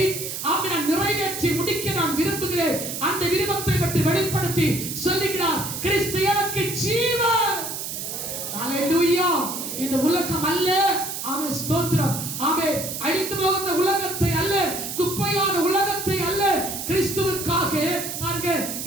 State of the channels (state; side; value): noise; right; hiss, 6 dB below the sound